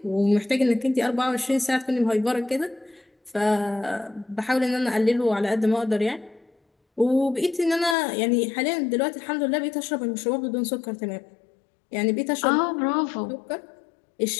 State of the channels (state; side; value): drops out; right; at 8.0 s